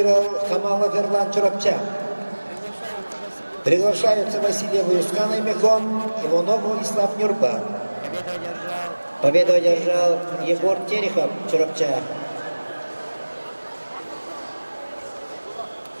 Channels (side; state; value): both; inverted; correlation -1.00